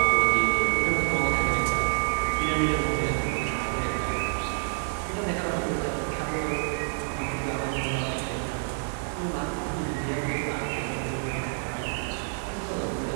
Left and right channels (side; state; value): left; silent; digital silence